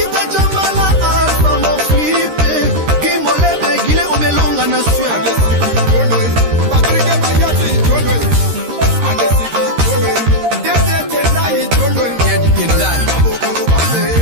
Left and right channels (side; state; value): left; late; 13 ms